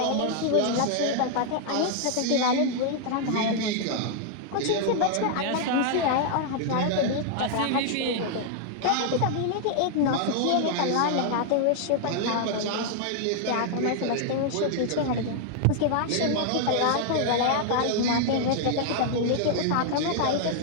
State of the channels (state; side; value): different; both; correlation -0.01